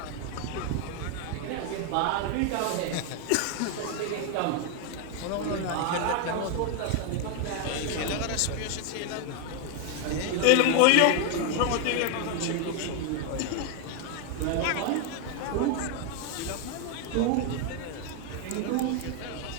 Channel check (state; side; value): different; both; correlation 0.01